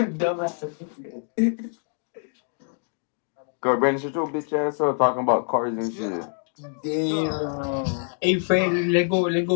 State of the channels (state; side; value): silent; right; 55 dB below the other